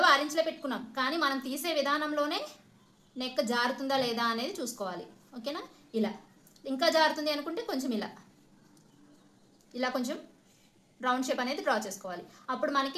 6 ఇంచులే పెట్టుకున్నాం, కానీ మనం తీసే విధానంలోనే నెక్ జారుతుందా లేదా అనేది చూసుకోవాలి. ఓకేనా, ఇలా ఇంకా జారుతుంది అనుకుంటే కొంచెం ఇలా కొంచెం రౌండ్ షేప్ అనేది డ్రా చేసుకోవాలి. అప్పుడు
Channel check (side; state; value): both; identical; correlation 1.00